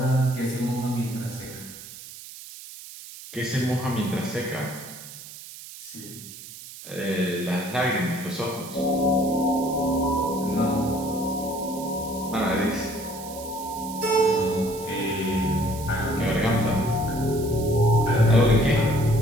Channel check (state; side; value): noise; right; hiss, 15 dB below the sound